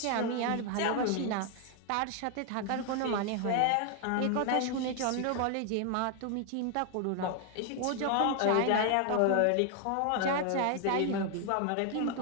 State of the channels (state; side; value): different; both; correlation 0.00